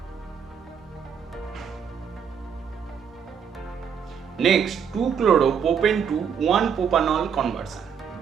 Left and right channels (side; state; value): left; quieter; 7.2 dB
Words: Next, 2-chloropropane to 1-propanol conversion.